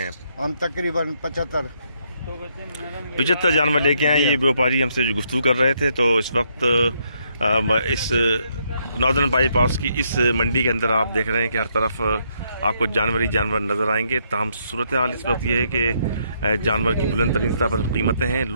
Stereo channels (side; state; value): both; inverted; correlation -0.74